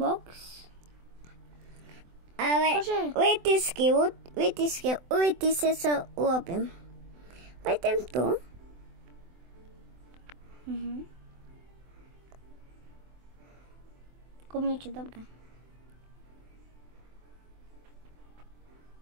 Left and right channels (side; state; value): left; late; 24 ms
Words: Ale vytisky sa urobím. Pojdem tu. Niečo dobré.